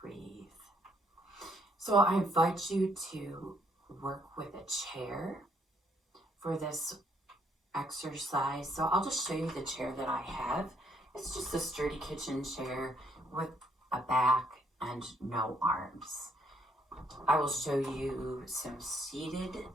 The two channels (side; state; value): both; normal; correlation 0.69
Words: breathe. So I invite you to work with a chair for this exercise. So I'll just show you the chair that I have. It's just a sturdy kitchen chair with a back and no arms. I will show you some seated